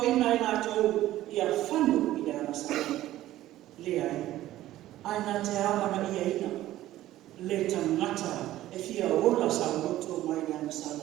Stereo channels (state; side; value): quieter; left; 14.6 dB